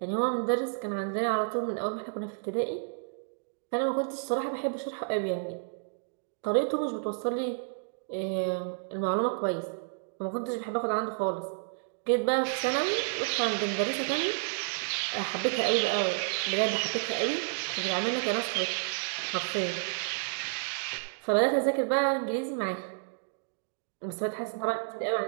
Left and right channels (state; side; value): silent; left; digital silence